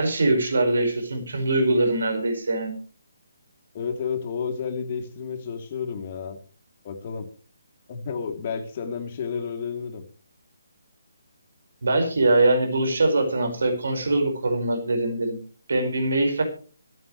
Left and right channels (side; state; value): both; inverted; correlation -0.80